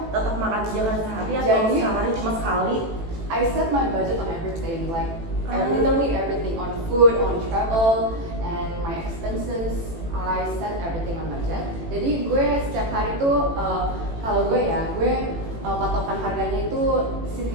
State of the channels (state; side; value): late; left; 18 ms